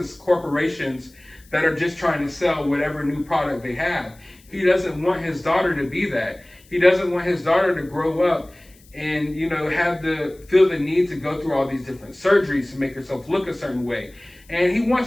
corporations that are just trying to sell whatever new product they have. He doesn't want his daughter to be that. He doesn't want his daughter to grow up and, feel the need to go through all these different surgeries to make herself look a certain way. And he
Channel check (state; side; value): noise; left; hiss, 28 dB below the sound